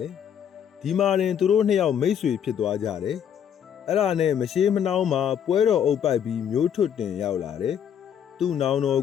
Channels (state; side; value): quieter; right; 8.7 dB